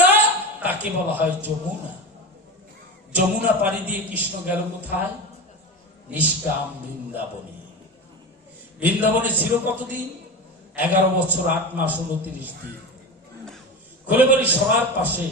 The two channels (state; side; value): normal; both; correlation 0.24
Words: তাকে বলা হয় যমুনা। যমুনা পাড়ি দিয়ে কৃষ্ণ গেল কোথায়? নিষ্কাম বৃন্দাবনে। বৃন্দাবনে ছিল কতদিন? 11 বছর 8 মাস 29 দিন। খুলে বলি, সবার পাশে